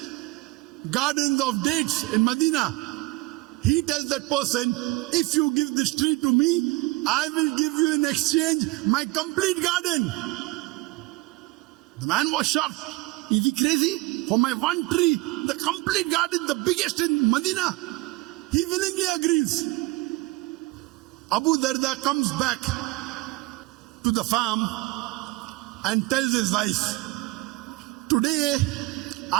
gardens of dates in Medina. He tells that person, if you give this tree to me, I will give you in exchange my complete garden. The man was shocked. Is he crazy? For my one tree, the complete garden, the biggest in Medina. He willingly agrees. Abu Darda comes back to the farm and tells his wife, today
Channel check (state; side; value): quieter; left; 21.4 dB